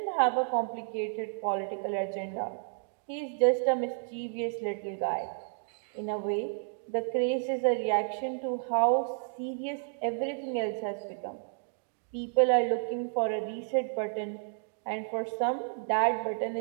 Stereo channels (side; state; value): left; silent; digital silence